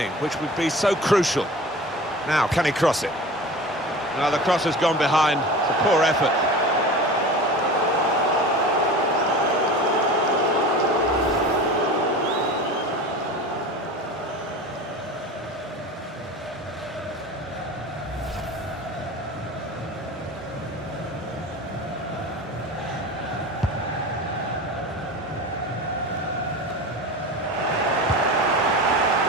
which would be so crucial. Now, can he cross it? Now, the cross has gone behind. It's a poor effort.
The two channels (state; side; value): normal; both; correlation 0.34